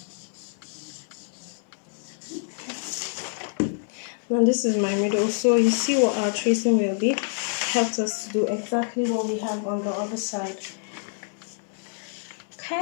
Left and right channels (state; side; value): silent; right; digital silence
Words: and this is my middle. So you see what our tracing will be. Helps us to do exactly what we have on the other side.